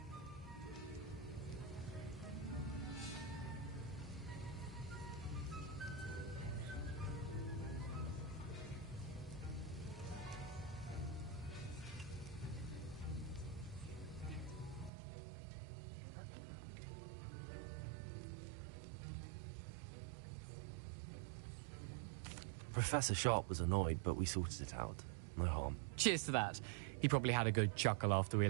Professor Sharp was annoyed, but we sorted it out. No harm. Cheers to that. He probably had a good chuckle after we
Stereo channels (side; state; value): left; drops out; at 14.9 s